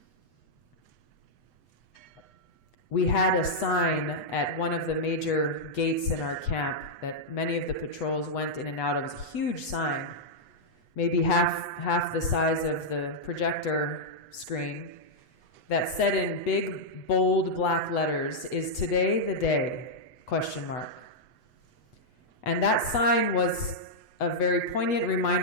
We had a sign at one of the major gates in our camp that many of the patrols went in and out of. It was a huge sign, maybe half the size of the projector screen, that said in big, bold black letters, "Is today the day?" ? And that sign was a very poignant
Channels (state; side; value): late; right; 8.1 ms